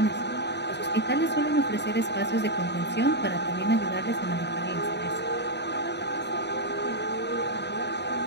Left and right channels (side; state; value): right; late; 0.50 ms